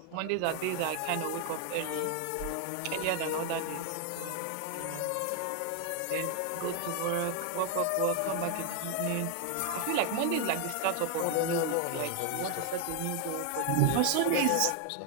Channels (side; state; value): both; different; correlation 0.00